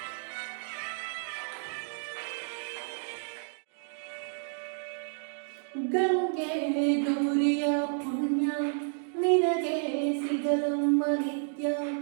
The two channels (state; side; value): silent; left; digital silence